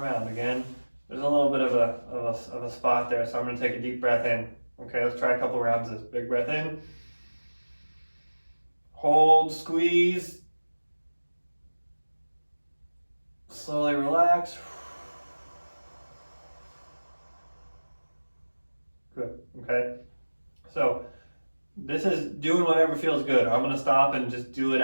Again, there's a little bit of a spot there, so I'm going to take a deep breath in. Okay, let's try a couple rounds of this. Big breath in. Hold, squeeze. Slowly relax. Good, okay? So this is doing whatever feels good. I'm gonna stop and just do it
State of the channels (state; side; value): inverted; both; correlation -1.00